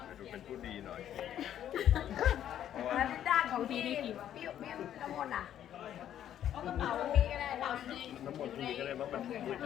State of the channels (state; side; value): quieter; right; 10.7 dB